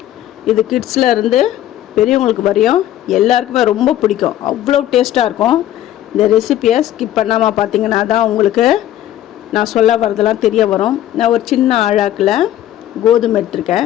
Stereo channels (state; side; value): quieter; right; 12.7 dB